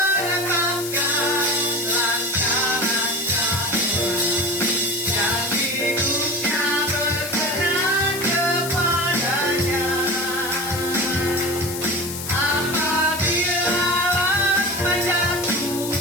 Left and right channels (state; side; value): noise; left; hiss, 8 dB below the sound